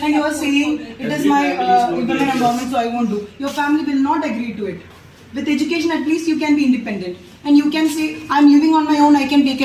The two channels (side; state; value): both; identical; correlation 1.00